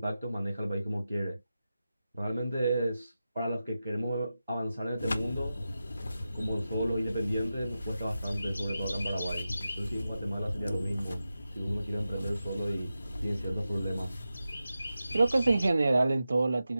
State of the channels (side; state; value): both; inverted; correlation -0.92